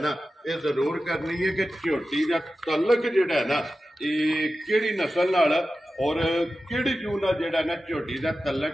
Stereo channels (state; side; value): normal; both; correlation 0.93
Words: ना ये जरूर करनी है कि झोटी दा तलक जेड़ा है ना ये केड़ी नस्ल नाल और केड़ी जू नाल जेड़ा ना झोटी दा